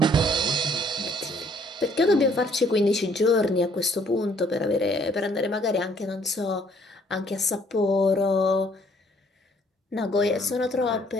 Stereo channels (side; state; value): both; normal; correlation 0.63